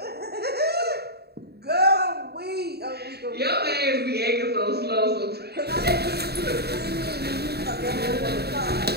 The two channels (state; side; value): late; left; 0.47 ms